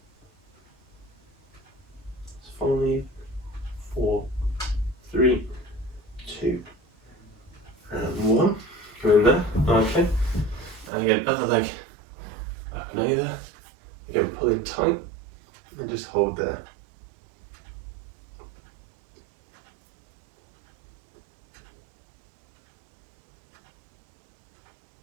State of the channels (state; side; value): drops out; left; at 10.9 s